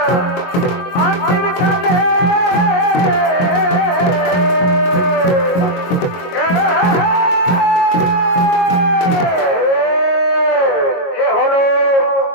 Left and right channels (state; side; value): late; right; 22 ms